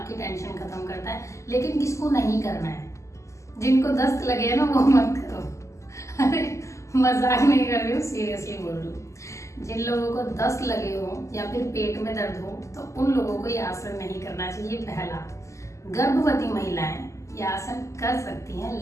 की टेंशन खत्म करता है। लेकिन किसको नहीं करना है? जिनको दस्त लगे ना वो मत करो। अरे मजाक नहीं कर रही हूँ, सीरियसली बोल रही हूँ। जिन लोगों को दस्त लगे हो या फिर पेट में दर्द हो तो उन लोगों को ये आसन नहीं करना चाहिए। पहला, गर्भवती महिलाएं ये आसन कर सकती हैं,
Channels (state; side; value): late; right; 0.15 ms